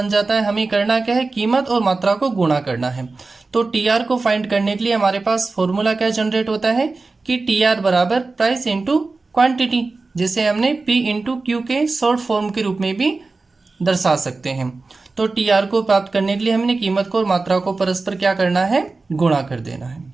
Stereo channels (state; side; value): quieter; left; 3.7 dB